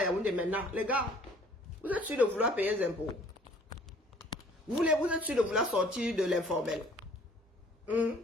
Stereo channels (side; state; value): both; normal; correlation 0.55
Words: il y a des maintenant. Les gars, vous êtes sûrs de vouloir payer les impôts. Vous êtes sûrs de vouloir sortir de l'informel.